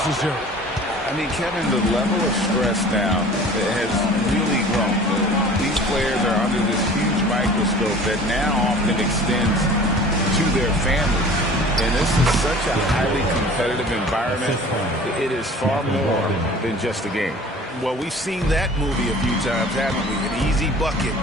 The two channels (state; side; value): normal; both; correlation 0.45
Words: I mean, Kevin, the level of stress now has really grown. These players are under this huge microscope that now often extends to their families. And this is such a highly competitive environment. It is far more than just a game. Well, we've seen that movie a few times, haven't we? An easy bucket